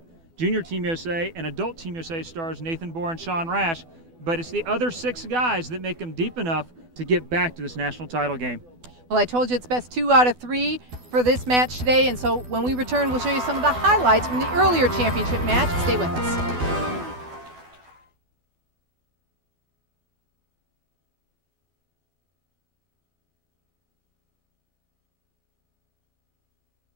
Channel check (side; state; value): left; late; 12 ms